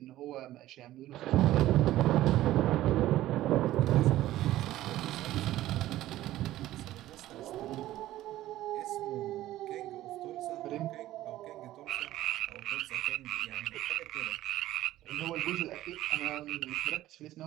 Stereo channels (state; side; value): quieter; left; 14.8 dB